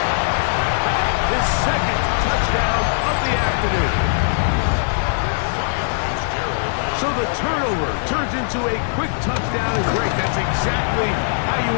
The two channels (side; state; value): right; silent; 65 dB below the other